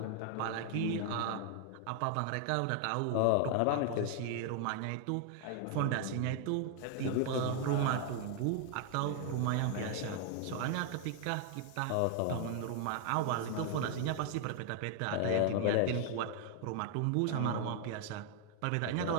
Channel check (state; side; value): different; both; correlation 0.00